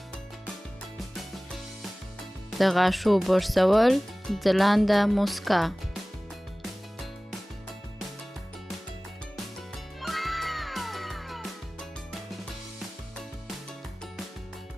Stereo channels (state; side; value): normal; both; correlation 0.98